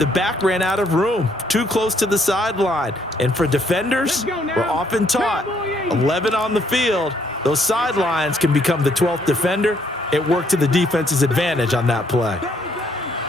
back ran out of room, too close to the sideline. And for defenders, we're often taught 11 on the field, those sidelines can become the 12th defender. It worked to the defense's advantage on that play.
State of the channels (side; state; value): both; normal; correlation 0.69